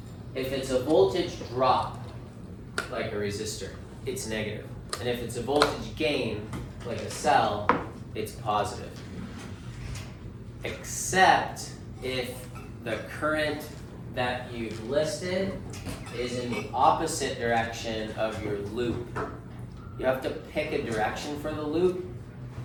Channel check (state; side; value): identical; both; correlation 1.00